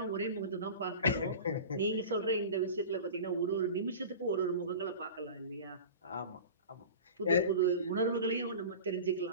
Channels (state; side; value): inverted; both; correlation -0.35